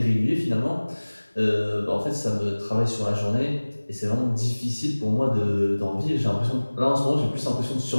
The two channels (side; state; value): both; inverted; correlation -1.00